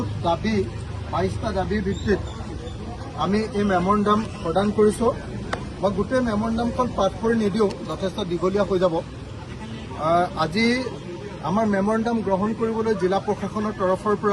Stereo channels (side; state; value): both; identical; correlation 1.00